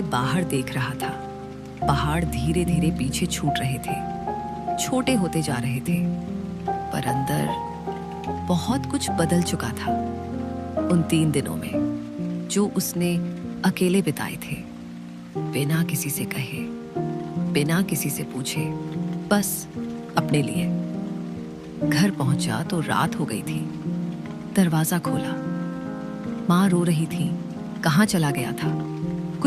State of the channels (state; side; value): identical; both; correlation 1.00